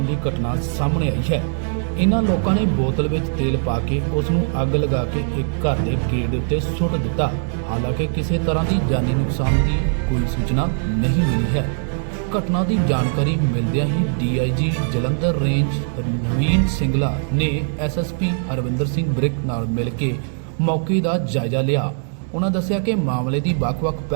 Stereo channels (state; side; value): silent; left; 65 dB below the other